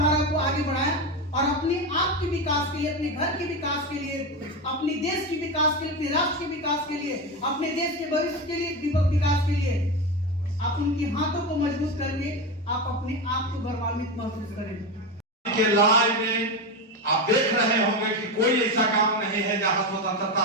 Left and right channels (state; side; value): normal; both; correlation 0.17